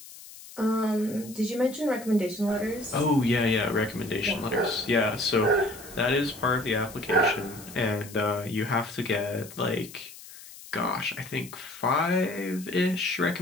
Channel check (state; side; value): noise; left; hiss, 17 dB below the sound